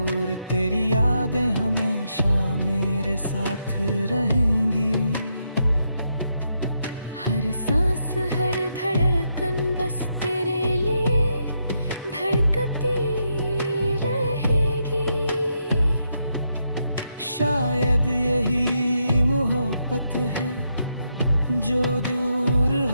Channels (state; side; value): inverted; both; correlation -0.80